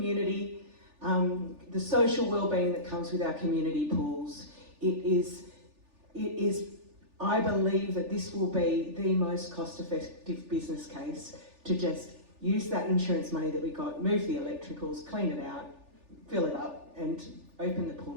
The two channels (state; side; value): late; left; 3.4 ms